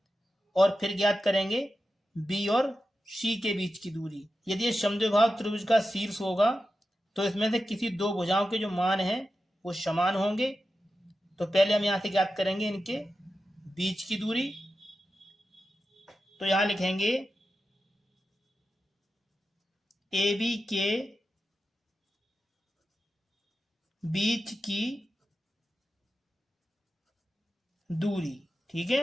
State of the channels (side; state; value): both; normal; correlation 0.91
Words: और फिर ज्ञात करेंगे बी और सी के बीच की दूरी। यदि ये समद्विबाहु त्रिभुज का शीर्ष होगा तो इसमें से किसी दो भुजाओं के जो मान हैं वो समान होंगे। तो पहले हम यहाँ से ज्ञात करेंगे इनके बीच की दूरी। तो यहाँ लिखेंगे ए बी के बीच की दूरी। ठीक